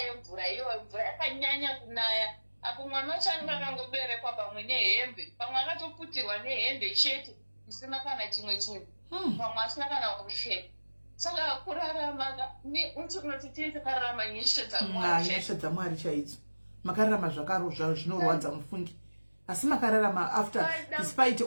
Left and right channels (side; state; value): both; inverted; correlation -1.00